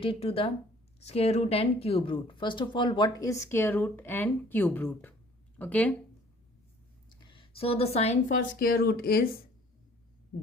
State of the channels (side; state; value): both; normal; correlation 0.54